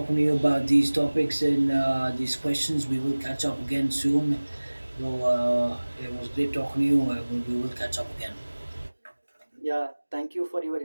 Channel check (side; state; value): both; inverted; correlation -1.00